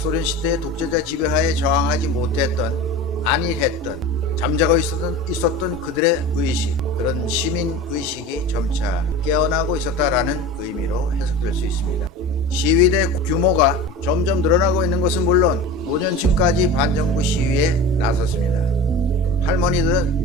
시대의 독재자 지배하에 저항하지 못했던, 안일했던, 잠자고 있었던 그들의 의식, 그런 시민 의식이 점차 깨어나고 있었다라는 의미로 해석될 수 있습니다. 시위대 규모가 점점 늘어나고 있는 것은 물론 노년층까지 반정부 시위에 나섰습니다.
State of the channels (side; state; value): both; normal; correlation 0.33